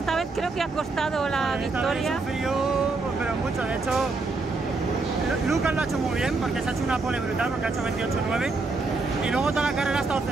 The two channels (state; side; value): quieter; left; 3.7 dB